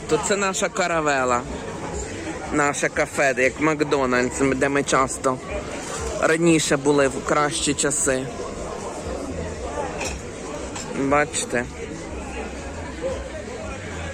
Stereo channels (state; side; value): identical; both; correlation 1.00